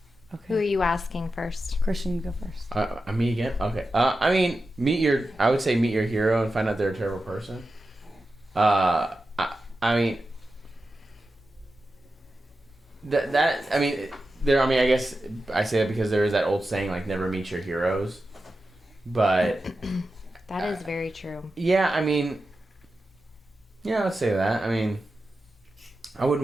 Who are Okay. you asking first? Christian, you go first. Me again? Okay. I mean, I would say meet your hero and find out they're a terrible person. I mean, I guess I say that because there is that old saying, like, never meet your heroes. But That is very true. yeah, I mean, yeah, I'd say that. I mean, I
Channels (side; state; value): both; normal; correlation 0.91